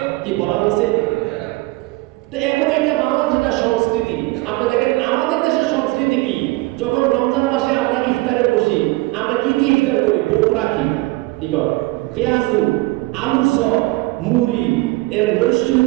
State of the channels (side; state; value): left; quieter; 21.6 dB